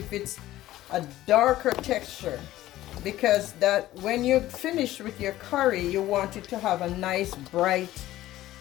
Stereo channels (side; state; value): right; quieter; 15.0 dB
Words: it's a darker texture, because that when you finish with your curry you want it to have a nice bright